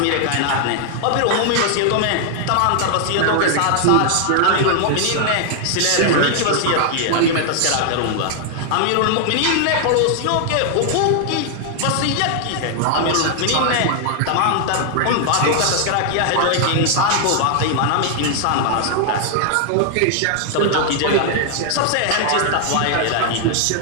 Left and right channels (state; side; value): different; both; correlation 0.00